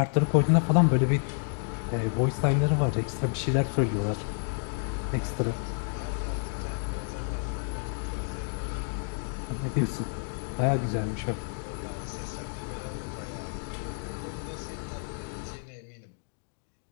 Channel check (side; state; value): right; silent; 58 dB below the other